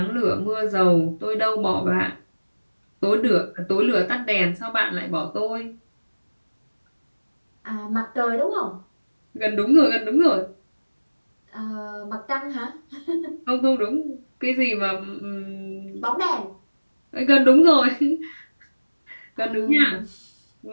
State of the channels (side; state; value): both; inverted; correlation -1.00